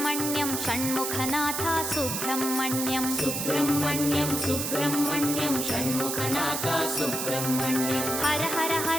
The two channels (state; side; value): noise; right; hiss, 2 dB below the sound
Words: Shanmukhanath Subrahmanyam Subrahmanyam Subrahmanyam Shanmukhanath Subrahmanyam Har Har